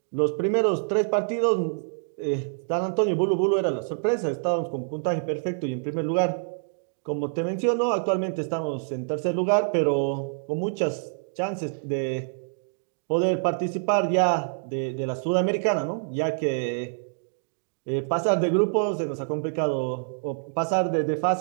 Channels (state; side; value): silent; left; digital silence